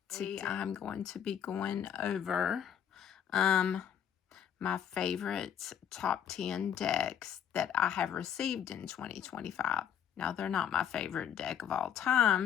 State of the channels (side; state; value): right; quieter; 9.0 dB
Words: Today I'm going to be going over my favorite top 10 decks that I have received in 2025. Now, they're not my favorite deck of all